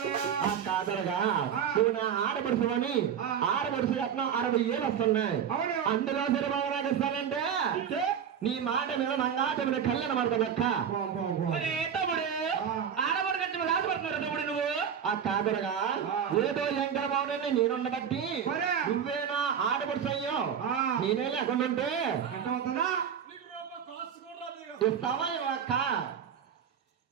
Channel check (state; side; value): quieter; left; 8.1 dB